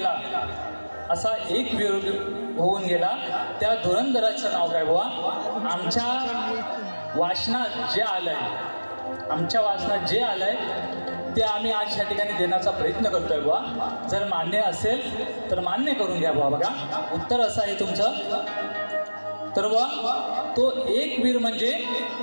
असा एक वीर होऊन गेला, त्या धुरंधराचं नाव काय बुवा? आमच्या वाचनात जे आलंय ते आम्ही आज या ठिकाणी देण्याचा प्रयत्न करतोय बुवा. जर मान्य असेल तर मान्य करून घ्या बुवा. बघा उत्तर असं आहे तुमचं. तर बुवा तो एक वीर म्हणजे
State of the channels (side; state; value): both; inverted; correlation -1.00